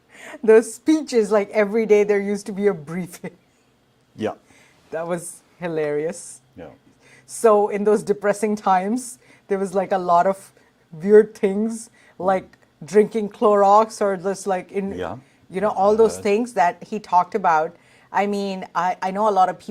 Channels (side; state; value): both; identical; correlation 1.00